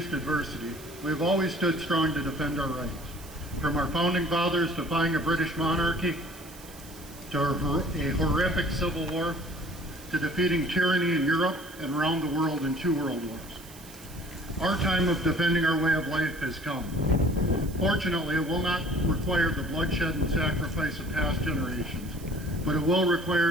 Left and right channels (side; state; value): right; noise; hiss, 19 dB below the sound